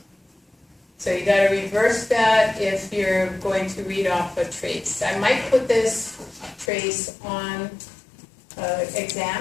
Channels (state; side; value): drops out; right; at 6.7 s